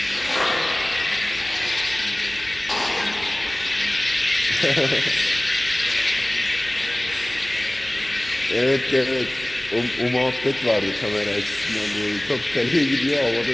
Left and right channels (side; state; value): right; noise; hum, 20 dB below the sound